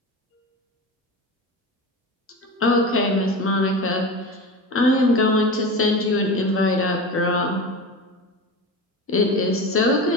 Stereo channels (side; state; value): both; normal; correlation 0.28